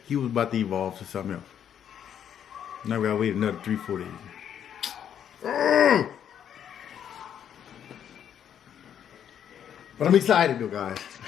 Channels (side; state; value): right; quieter; 9.2 dB